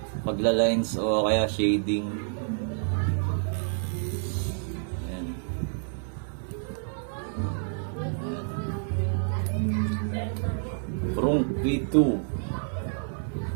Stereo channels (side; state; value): left; silent; digital silence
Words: pagla-lines o kaya shading. Ayan. Prong V2.